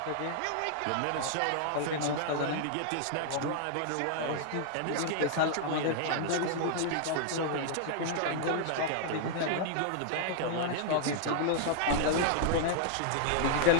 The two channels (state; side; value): different; both; correlation -0.01